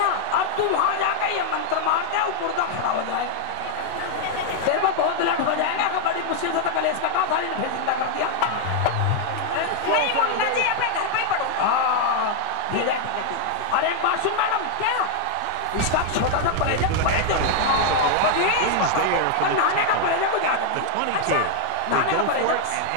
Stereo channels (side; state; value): both; different; correlation 0.00